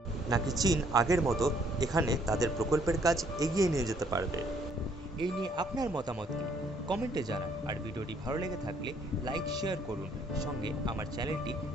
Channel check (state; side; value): normal; both; correlation 0.65